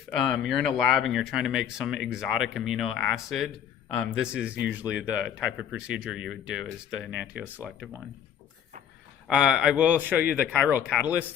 you're in a lab and you're trying to make some exotic amino acid, this is usually the type of procedure you would do, is the Enantio Selective one. I will show you the chiral catalyst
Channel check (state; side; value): quieter; right; 9.0 dB